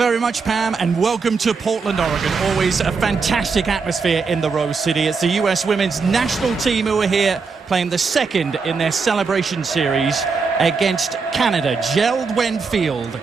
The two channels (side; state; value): left; quieter; 4.9 dB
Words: much, Pam, and welcome to Portland, Oregon. Always a fantastic atmosphere in the Rose City. It's the U.S. women's national team who are here playing the second in their celebration series against Canada. Gerald Field